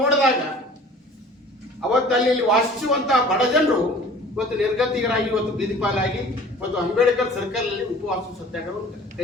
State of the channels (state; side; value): normal; both; correlation 0.47